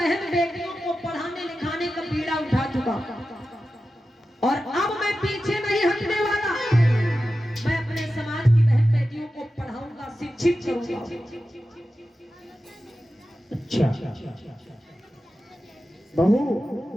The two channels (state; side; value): normal; both; correlation 0.93